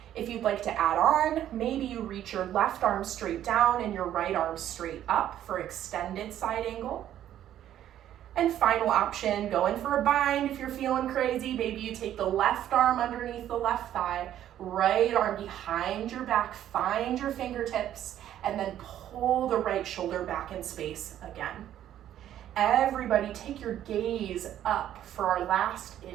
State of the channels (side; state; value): left; quieter; 11.5 dB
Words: If you'd like to add on, maybe you reach your left arm straight down and your right arm straight up for extended side angle. And final option, go in for a bind if you're feeling crazy. Maybe you take the left arm underneath the left thigh, right arm behind your back, find your fingertips, and then pull the right shoulder back in space again. Everybody take your gaze up for our last